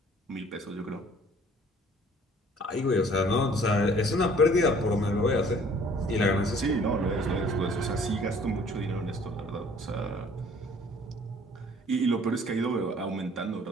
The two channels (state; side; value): normal; both; correlation 0.55